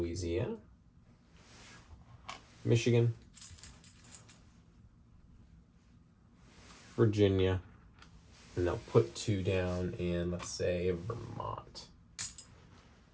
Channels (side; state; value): both; identical; correlation 1.00